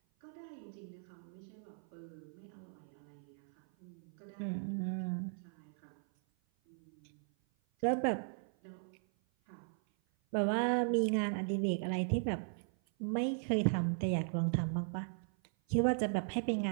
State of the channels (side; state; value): left; silent; 53 dB below the other